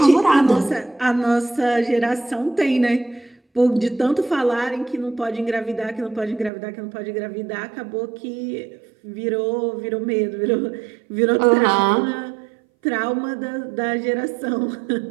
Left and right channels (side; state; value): left; drops out; at 6.5 s